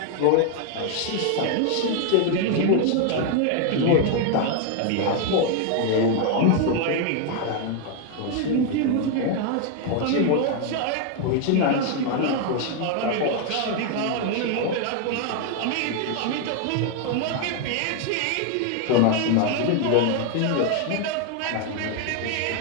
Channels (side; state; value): both; different; correlation 0.01